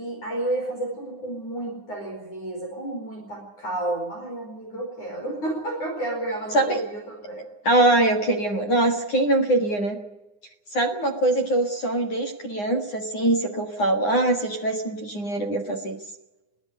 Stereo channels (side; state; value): right; late; 9.7 ms